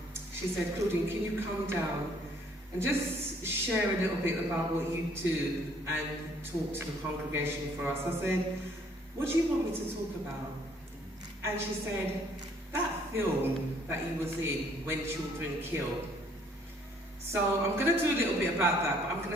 she said, "Claudine, can you come down and just share a little bit about what you do and talk to the congregation for us?" I said, "What do you want me to talk about?" And she said, "That film that he was in, When Children Kill." So I'm going to do a little bit about that, but I'm going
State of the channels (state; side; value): normal; both; correlation 0.62